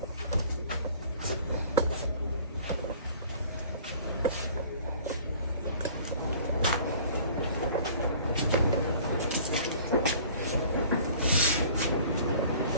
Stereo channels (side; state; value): both; inverted; correlation -0.49